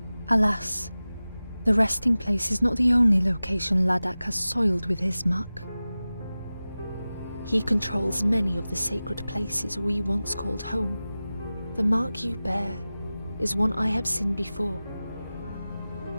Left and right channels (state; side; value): inverted; both; correlation -0.96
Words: Alas, the resting place is not the only location Laddock has soiled with his muck. He controls many of the sacred places we once called home. The mark you bear is one I have seen before.